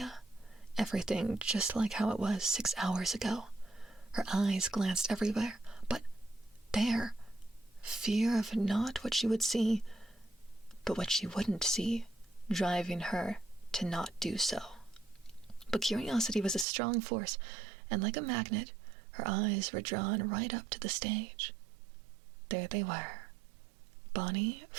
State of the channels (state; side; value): drops out; left; at 16.7 s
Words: Everything just like how it was 6 hours ago. Her eyes glanced everywhere, but there, fear of not what she would see, but what she wouldn't see, driving her to not do so. But curiosity was a strong force, and like a magnet, her eyes were drawn right up to the stage. There they were, Bonnie,